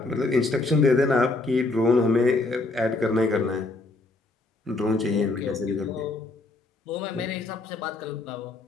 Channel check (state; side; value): quieter; right; 3.2 dB